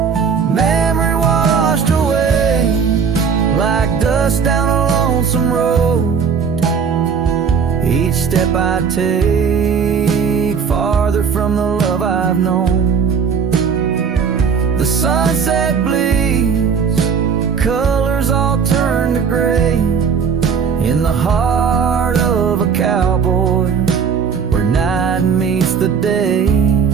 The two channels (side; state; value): left; quieter; 6.3 dB